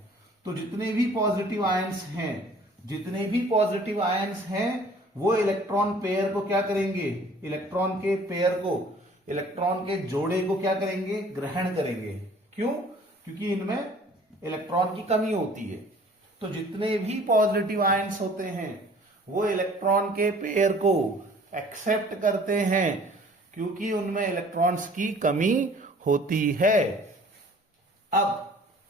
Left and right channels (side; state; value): both; normal; correlation 0.52